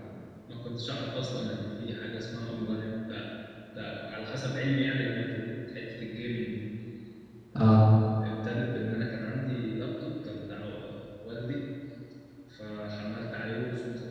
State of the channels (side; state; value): both; identical; correlation 1.00